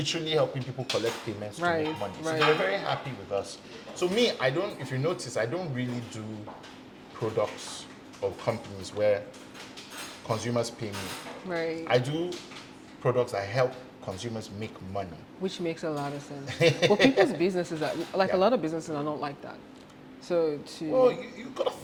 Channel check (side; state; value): both; identical; correlation 1.00